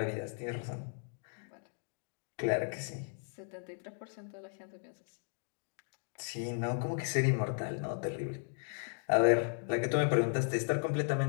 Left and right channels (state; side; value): silent; right; 54 dB below the other